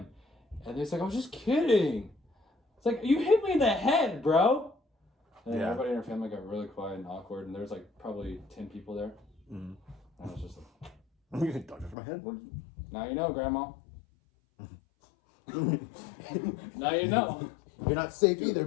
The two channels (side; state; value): right; drops out; at 12.0 s